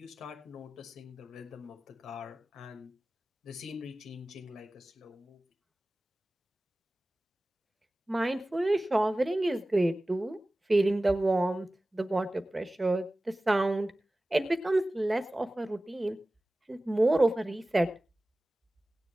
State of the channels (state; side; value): normal; both; correlation 0.97